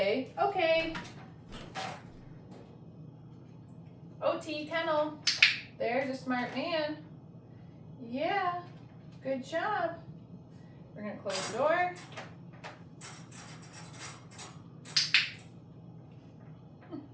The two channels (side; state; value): both; identical; correlation 1.00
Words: okay. Otti, kennel. There's a smart man. Yeah. Good job. We're going to close the door.